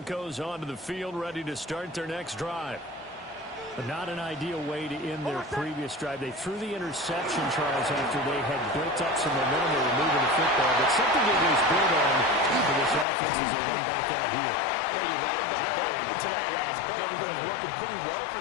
onto the field, ready to start their next drive. But not an ideal way to end their previous drive. They threw the interception, Charles, after they had built up some momentum. They were moving the football, but something they was built on for this offense as they run back out here. Yeah, you're right about that. To that last play, everything was working pretty well for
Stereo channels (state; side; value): drops out; right; at 13.1 s